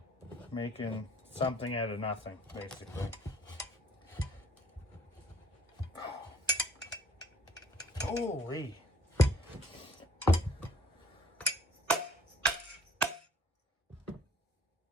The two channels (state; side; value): normal; both; correlation 0.58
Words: making something out of nothing, basically. Holy.